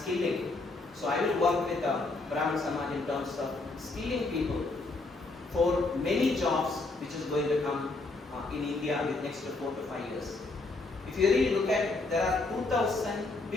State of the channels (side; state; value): right; quieter; 3.3 dB